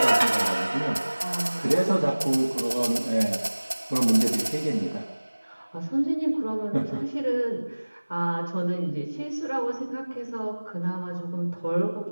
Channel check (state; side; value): inverted; both; correlation -1.00